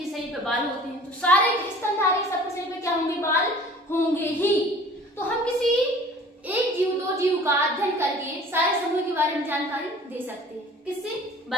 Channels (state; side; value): normal; both; correlation 0.47